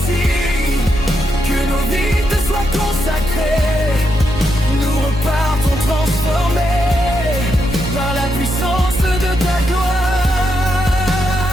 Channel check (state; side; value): normal; both; correlation 0.82